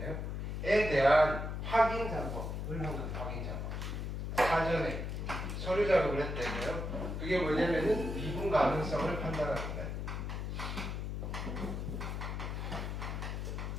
에 대한 확인 작업을 한 거예요. 확인 작업. 사전에 서류 작업을 했대요. 그게 뭐냐면은 미분 가능성을 판단하는 거예요.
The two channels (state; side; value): noise; left; hum, 4 dB below the sound